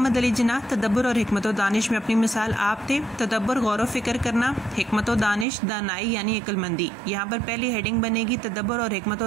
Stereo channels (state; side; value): drops out; left; at 5.5 s